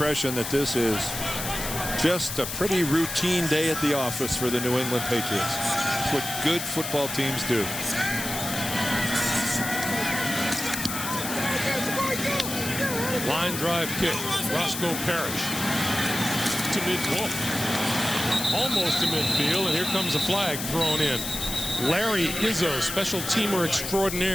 that this is just a pretty routine day at the office for the New England Patriots. It's what good football teams do. Line drive kick. Roscoe Parrish to mid-field. Almost to midfield, and here comes a flag thrown in. Larry Izzo, special teamer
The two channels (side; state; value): left; noise; hiss, 5 dB below the sound